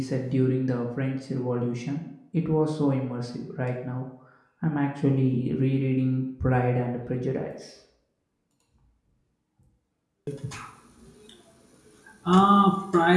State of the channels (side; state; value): both; identical; correlation 1.00